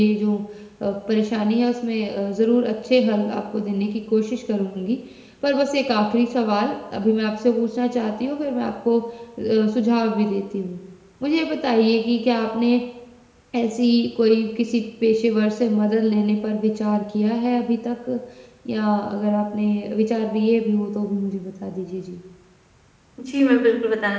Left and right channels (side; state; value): both; identical; correlation 1.00